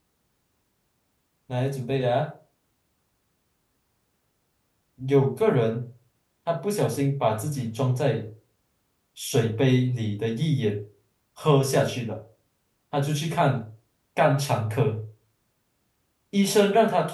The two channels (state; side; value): identical; both; correlation 1.00